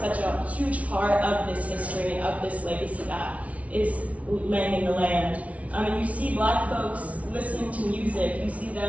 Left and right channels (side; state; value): left; late; 0.066 ms